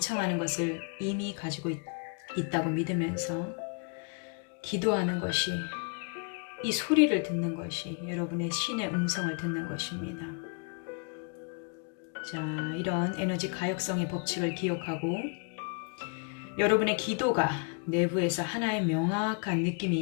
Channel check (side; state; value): right; quieter; 38.5 dB